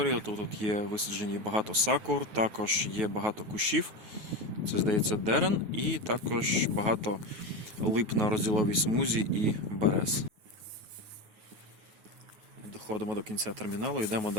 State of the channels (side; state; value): left; late; 9.4 ms